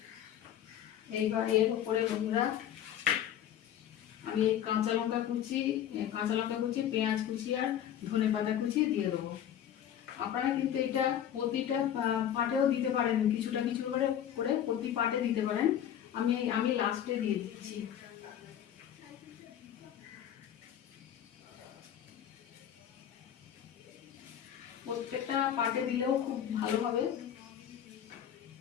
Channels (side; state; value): right; quieter; 10.2 dB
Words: এইবার এর উপরে বন্ধুরা আমি কাঁচা লঙ্কা কুচি, পেঁয়াজ কুচি আর ধনেপাতা কুচি দিয়ে দেবো। আপনারা কিন্তু এটা প্রতিটা পাটেও দিতে পারেন, কিছুটা কিছু করে করে প্রতি পাটে দিতে পারেন। আমি লাস্টে দিয়ে দিচ্ছি। প্রত্যেকটা পাটে দিলেও খুব ভালো হবে।